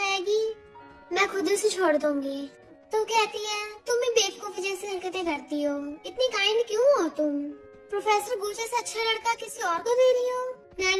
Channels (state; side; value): identical; both; correlation 1.00